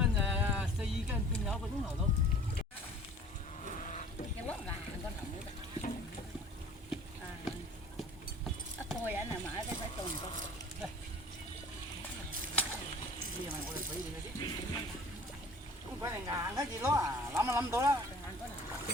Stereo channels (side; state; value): both; normal; correlation 0.48